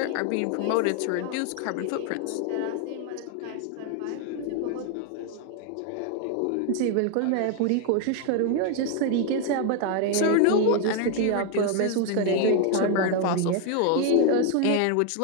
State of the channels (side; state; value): both; different; correlation 0.00